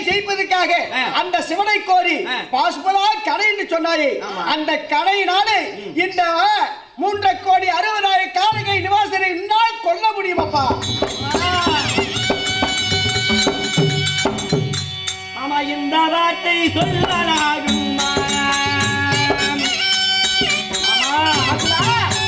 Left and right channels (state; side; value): identical; both; correlation 1.00